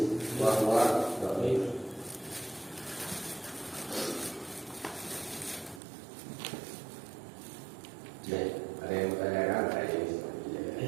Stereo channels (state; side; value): drops out; left; at 5.8 s